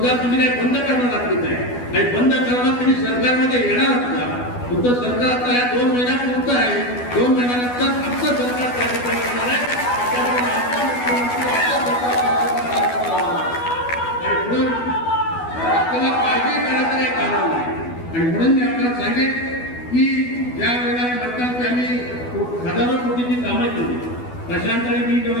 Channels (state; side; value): late; right; 12 ms